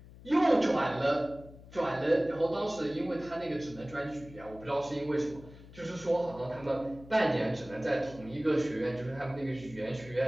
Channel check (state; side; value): noise; left; hum, 19 dB below the sound